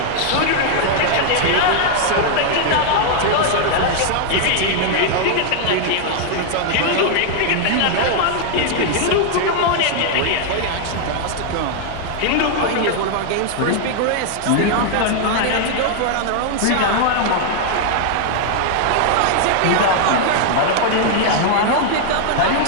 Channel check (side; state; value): both; different; correlation 0.00